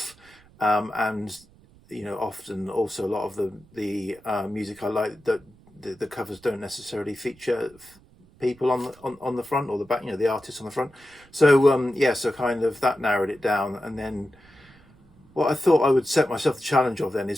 and often also a lot of the music I like, that the covers don't necessarily feature people on the front or the back, the artists on the front. So yeah, so kind of that narrowed it down. And then what I thought I would set myself the challenge of then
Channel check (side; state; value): right; noise; rumble, 27 dB below the sound